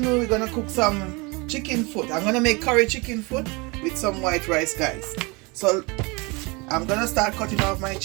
we're gonna cook some chicken foot. I'm gonna make curry chicken foot with some white rice, guys. So I'm gonna start cutting off my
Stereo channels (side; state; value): left; quieter; 27.3 dB